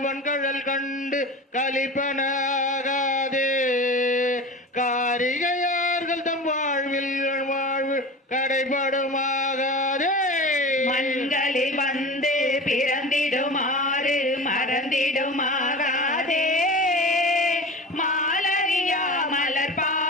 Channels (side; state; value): both; normal; correlation 0.33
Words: கழல் கண்டு கலிப்பனாகாதே, காரிகையார்கள் தம் வாழ்வில் வாழ்வு கடைபடுமாகாதே. மண்களில் வந்து பிறந்திடுமாறு மறந்திடுமாகாதே, மாலரியா மலர்